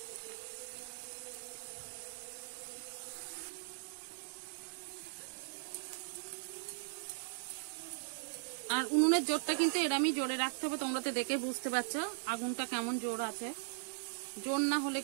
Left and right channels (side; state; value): left; silent; digital silence